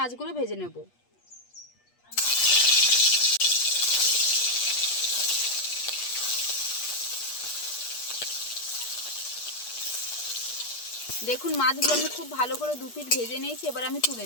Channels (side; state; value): right; late; 8.4 ms